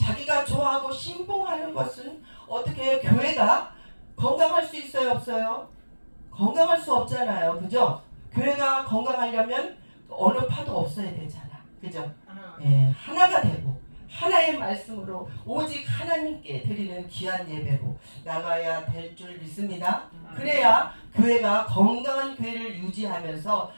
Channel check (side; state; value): both; inverted; correlation -1.00